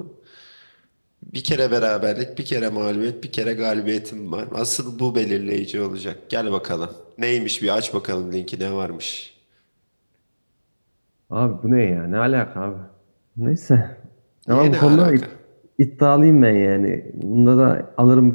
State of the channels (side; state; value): both; inverted; correlation -1.00